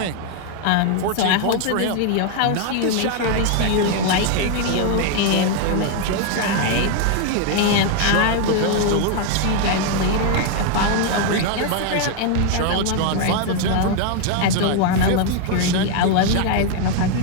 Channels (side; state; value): both; different; correlation 0.01